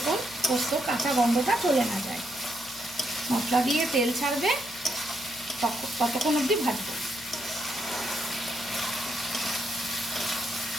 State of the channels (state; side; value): noise; left; hum, 22 dB below the sound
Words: পোস্ত কাঁচা গন্ধটা চলে না যায়। মশলা দিয়ে তেল ছাড়বে, ততক্ষণ অবধি ভাজবো।